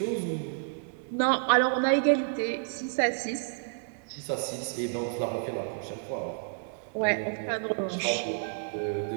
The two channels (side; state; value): left; silent; digital silence